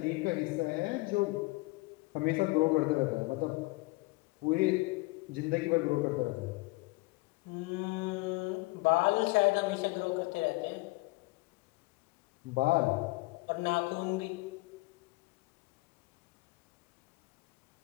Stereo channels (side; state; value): right; quieter; 24.0 dB